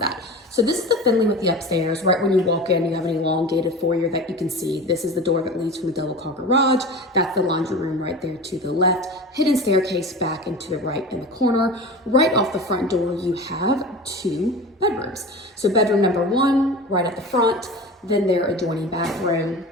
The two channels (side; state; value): both; normal; correlation 0.33